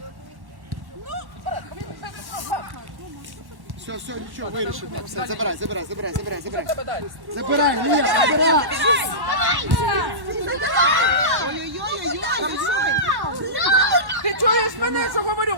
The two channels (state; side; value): late; left; 1.1 ms